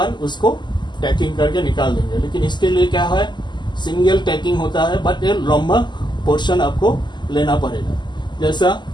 उसको टैकिंग करके निकाल देंगे। लेकिन इसके लिए क्या है, सिंगल टैकिंग होता है, बट ये लंबा पोर्शन आपको लेना पड़ेगा। जैसा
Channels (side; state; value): right; late; 0.21 ms